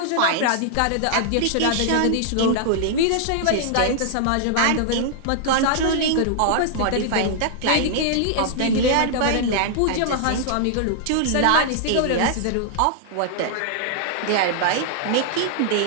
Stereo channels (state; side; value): different; both; correlation -0.01